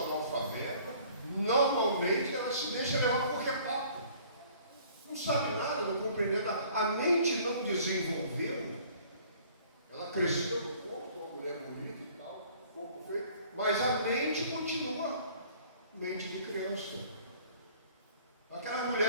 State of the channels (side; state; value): both; inverted; correlation -0.54